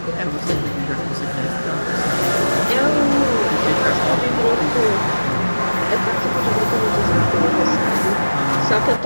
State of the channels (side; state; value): both; inverted; correlation -1.00